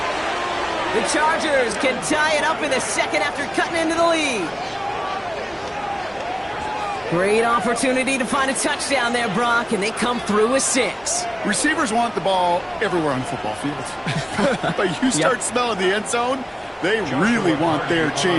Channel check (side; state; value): both; identical; correlation 1.00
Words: The Chargers can tie it up in the second after cutting into the lead. Great opportunity to find a touchdown there, Brock, and they come through with 6. Receivers want the ball everywhere on the football field. But you start smelling the end zone, they really want their